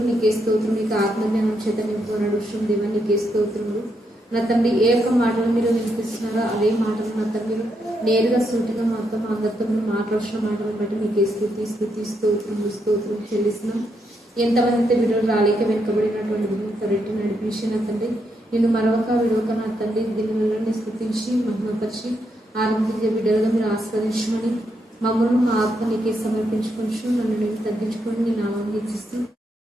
మీకే స్తోత్రం. మీకు ఆత్మజ్ఞానం చేత నింపుకున్నాడు విషయం దేవ నీకే స్తోత్రములు నా తండ్రి. ఏ ఒక్క మాటలు మీరు వినిపిస్తున్నారో అదే మాటలు నా తండ్రి నేరుగా సూటిగా మాతో మా అందరితో మీరు మాట్లాడుతున్న మాటలను బట్టి మీకే స్తుతి స్తుతి స్తోత్రములు స్తోత్రం చెల్లిస్తున్నాం. ఎంతమంది వీడియోలు రాలేక వెనుకబడినటువంటి రెట్టి నడిపించి నా తండ్రి, నేను మరొక విడవక నా తండ్రి దీనిని స్తుతించి మహిమపరిచి ఆనందించే బిడ్డలుగా మీరు ఆస్వాదించమని మమ్మల్ని మా ఆత్మ నీకే సమర్పించుకొని నన్ను నేను తగ్గించుకొని నేను ఆనందిస్తూ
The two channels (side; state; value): both; normal; correlation 0.79